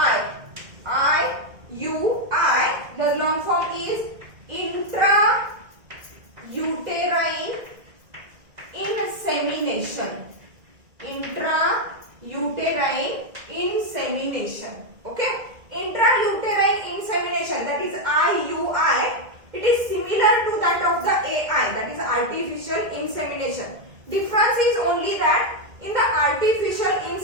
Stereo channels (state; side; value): late; left; 2.0 ms